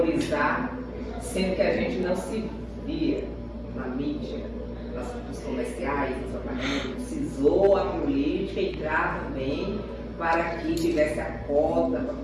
sendo que a gente não se via na mídia, nos comerciais, nos apartamentos. Precisou a política entrar também para que tivesse a cota, para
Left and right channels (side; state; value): both; identical; correlation 1.00